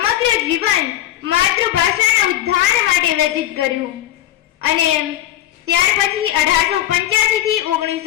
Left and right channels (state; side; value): quieter; right; 13.2 dB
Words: જીવન માતૃભાષાના ઉદ્ધાર માટે વ્યતીત કર્યું અને ત્યાર પછી 1885 થી